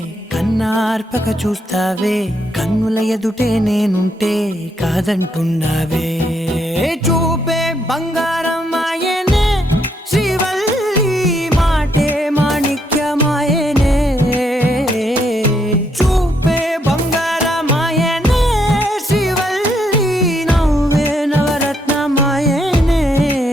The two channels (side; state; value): both; normal; correlation 0.75